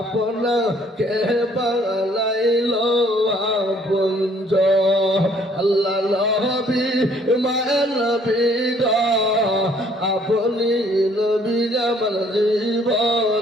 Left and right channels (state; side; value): normal; both; correlation 0.61